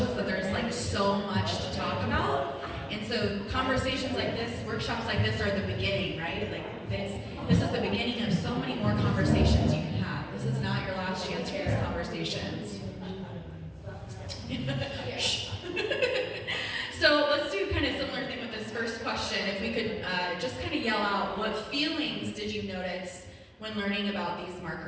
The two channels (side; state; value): both; identical; correlation 1.00